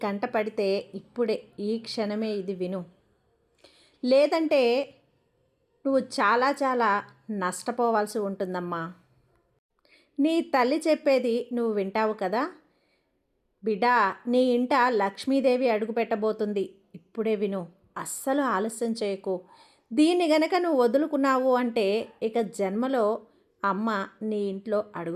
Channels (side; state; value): both; identical; correlation 1.00